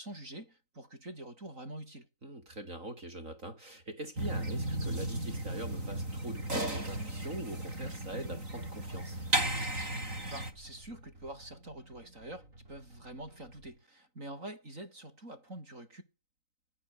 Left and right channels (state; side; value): late; left; 3.9 ms